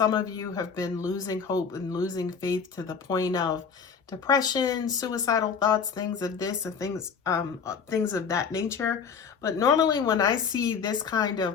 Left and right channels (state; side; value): quieter; right; 6.3 dB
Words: of you have been losing hope and losing faith to the point of depression, suicidal thoughts, things of this and things of that nature. But normally when I see this kind